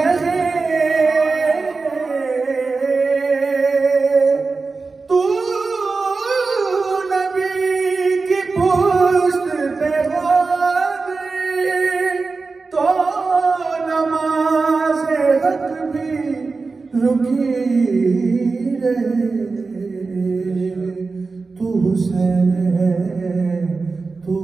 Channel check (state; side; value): quieter; left; 4.1 dB